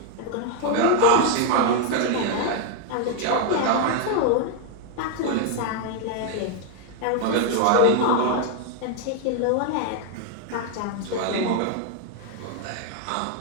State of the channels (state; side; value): different; both; correlation 0.01